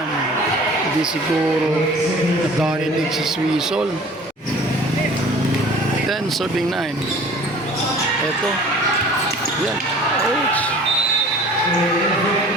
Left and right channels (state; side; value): normal; both; correlation 0.46